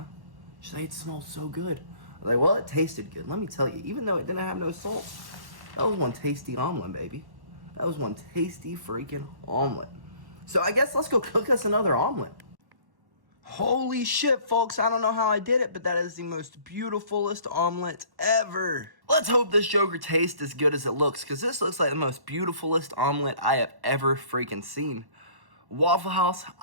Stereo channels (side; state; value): left; late; 1.1 ms